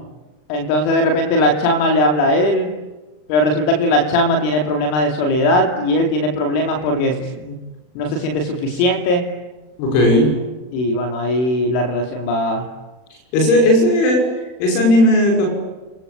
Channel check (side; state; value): right; late; 40 ms